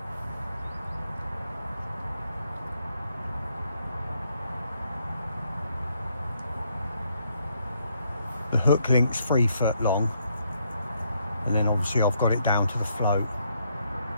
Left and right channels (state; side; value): inverted; both; correlation -0.75